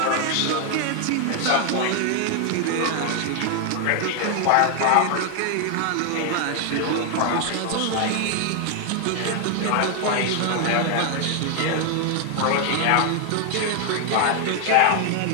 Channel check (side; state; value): both; different; correlation 0.00